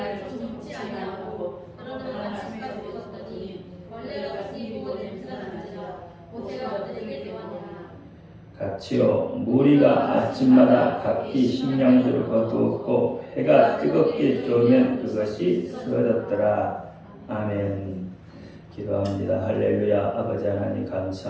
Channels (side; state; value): both; identical; correlation 1.00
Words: 같이요 무리가 아침마다 각기 식량들을 거두었고 해가 뜨겁게 쫄면 그것이 쓰러졌더라. 아멘. 기도합니다. 할렐루야. 아버지 하나님